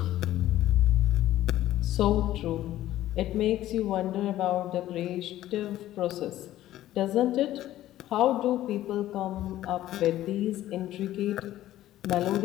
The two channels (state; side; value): quieter; right; 14.0 dB